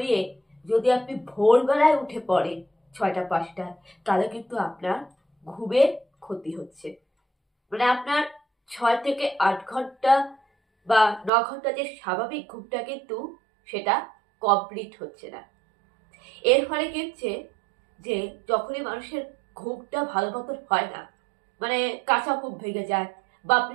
যদি আপনি ভোরবেলায় উঠে পড়েন 6টা 5টায়, তাহলে কিন্তু আপনার ঘুমের ক্ষতি হচ্ছে। মানে আপনার 6 থেকে 8 ঘন্টা বা 9 ঘন্টা যে স্বাভাবিক ঘুমটা, কিন্তু সেটা কমপ্লিট হচ্ছে না। এর ফলে কি হচ্ছে যে যখনই মানুষের ঘুমটা ভালো মতন হয় না, মানে কাঁচা ঘুম ভেঙে যায়, বা আপনি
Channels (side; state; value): left; drops out; at 11.3 s